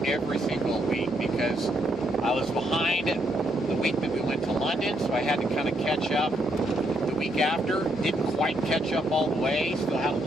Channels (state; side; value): normal; both; correlation 0.75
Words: every single week, because I was behind the week that we went to London, so I had to kind of catch up. The week after, didn't quite catch up all the way, still had a